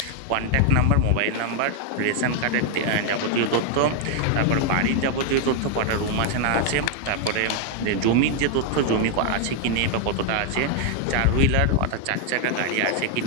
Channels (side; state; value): both; different; correlation 0.00